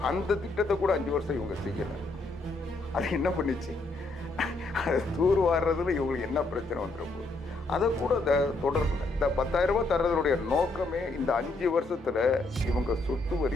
அந்த திட்டத்தை கூட 5 வருஷம் இவங்க செய்யலை. அது என்ன பண்ணிச்சு? அதை தூர் வாடுறதுல இவங்களுக்கு என்ன பிரச்சனை வந்துட போகுது? அதை கூட தொடரல. இந்த 10,000 ரூபாய் தர்றதுடைய நோக்கமே இந்த 5 வருஷத்துல இவங்க சொத்து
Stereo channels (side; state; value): right; quieter; 3.1 dB